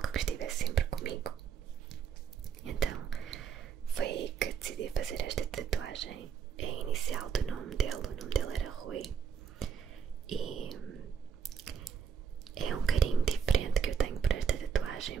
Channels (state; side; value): quieter; left; 7.0 dB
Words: que estivesse sempre comigo. Então foi aí que decidi fazer esta tatuagem. É a inicial do nome dele, o nome dele era Rui. E é um carinho diferente que eu tenho por esta